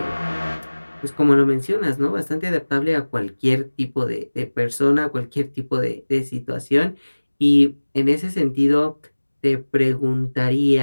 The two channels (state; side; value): inverted; both; correlation -1.00